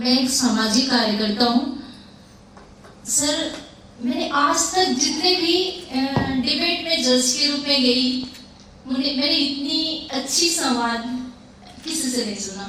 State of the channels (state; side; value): identical; both; correlation 1.00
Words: एक सामाजिक कार्यकर्ता हूँ। सर मैंने आज तक जितने भी डिबेट में जज के रूप में गई, मैंने इतनी अच्छी संवाद किसी से नहीं